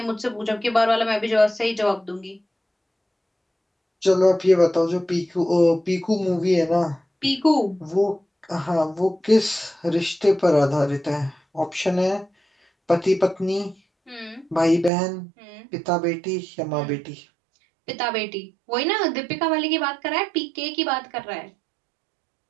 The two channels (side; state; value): left; drops out; at 14.9 s